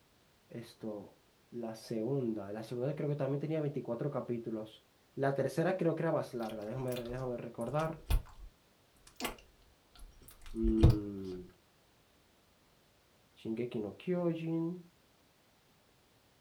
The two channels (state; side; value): identical; both; correlation 1.00